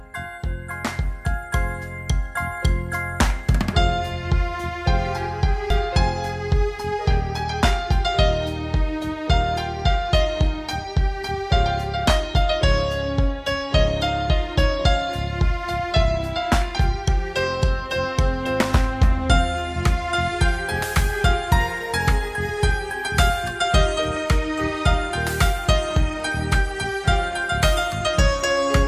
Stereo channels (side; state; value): both; identical; correlation 1.00